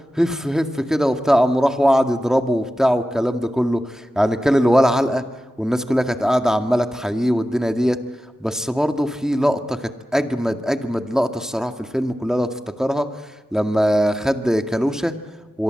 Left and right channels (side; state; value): both; normal; correlation 0.93